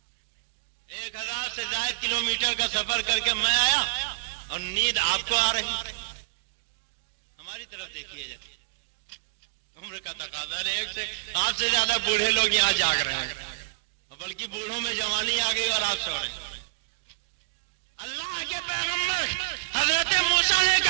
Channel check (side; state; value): left; quieter; 28.3 dB